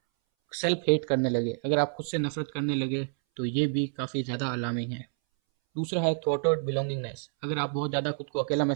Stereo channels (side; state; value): left; silent; 59 dB below the other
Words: सेल्फ हेट करने लगे, अगर आप खुद से नफरत करने लगे, तो ये भी काफ़ी ज़्यादा अलार्मिंग है। दूसरा है थॉटवर्ड बिलोंगिंगनेस। अगर आप बहुत ज़्यादा खुद को अकेला